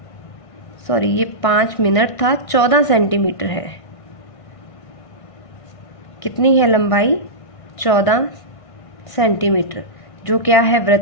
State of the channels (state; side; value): late; right; 1.5 ms